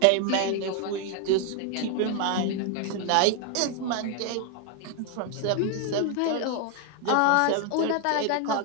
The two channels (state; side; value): different; both; correlation 0.01